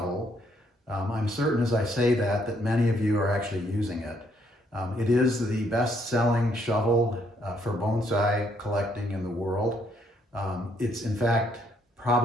I'm certain as I say that many of you are actually using it. It is the best-selling shovel for bonsai collecting in the world. It's in fact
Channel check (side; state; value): both; normal; correlation 0.71